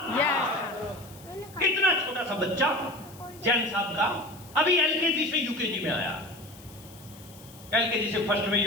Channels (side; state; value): left; noise; hiss, 21 dB below the sound